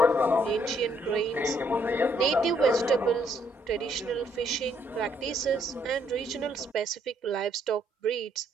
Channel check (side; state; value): both; normal; correlation 0.70